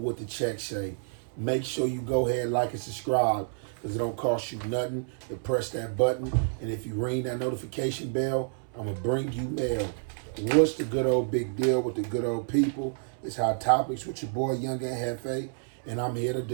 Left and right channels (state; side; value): silent; left; 58 dB below the other